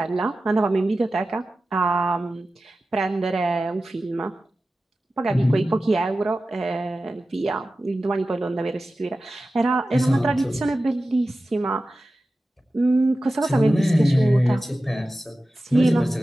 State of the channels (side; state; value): both; normal; correlation 0.94